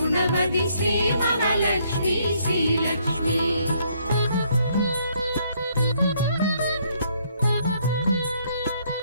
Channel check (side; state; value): both; inverted; correlation -0.69